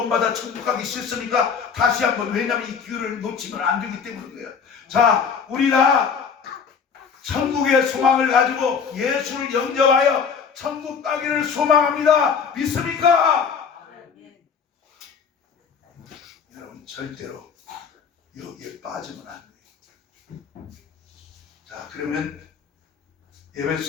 천국 가기 싫습니까? 다시 한번, 왜냐하면 이 기회를 놓치면 안 되기 때문이에요. 자, 우리 다 천국의 소망을 가지고 예수를 영접하여 천국 가기를 소망합니다. 믿습니까? 여러분 절대로 여기에 빠지면 안 돼요. 자, 그러면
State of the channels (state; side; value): quieter; right; 6.3 dB